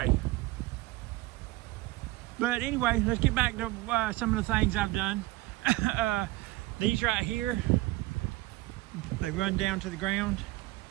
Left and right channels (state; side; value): quieter; left; 19.4 dB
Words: But anyway, let's get back to some of the things I've done. These right here, they run down to the ground.